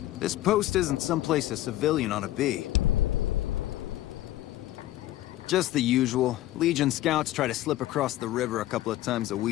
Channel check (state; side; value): quieter; right; 15.1 dB